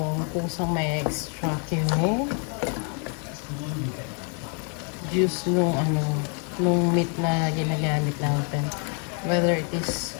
kusang may extract yung juice nung nung meat na ginagamit natin. Whether it is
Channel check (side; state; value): right; quieter; 39.9 dB